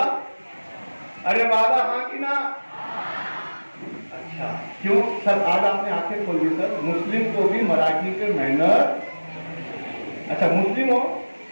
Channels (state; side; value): inverted; both; correlation -1.00